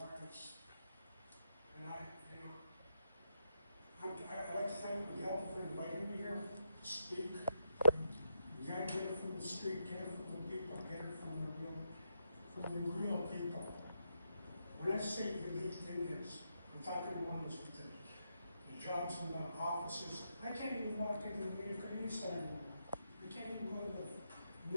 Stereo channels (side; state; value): both; inverted; correlation -0.83